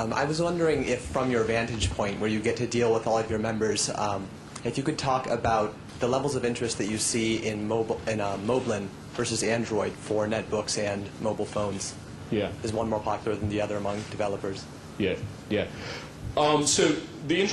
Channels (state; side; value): identical; both; correlation 1.00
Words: was wondering if, from your vantage point, where you get to deal with all of your members, if you could talk about the levels of interest that you see in Moblin versus Android for netbooks and mobile phones. Yeah. Is one more popular than the other among developers? Yeah, yeah. So the